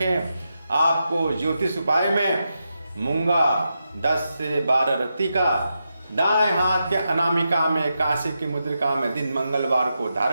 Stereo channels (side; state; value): both; inverted; correlation -0.87